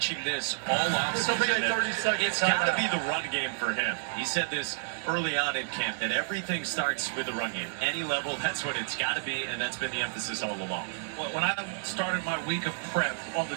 this all offseason. It's got to be the run game for him. He said this early on in camp, that everything starts with the run game. Any level, that's what it's got to be, and that's been the emphasis all along. Well, when I started my week of prep on the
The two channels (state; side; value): silent; left; 56 dB below the other